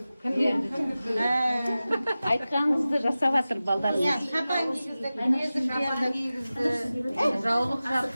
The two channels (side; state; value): both; inverted; correlation -0.96